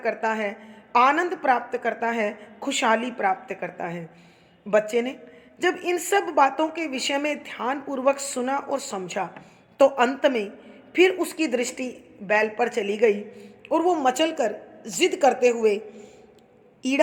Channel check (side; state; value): both; identical; correlation 1.00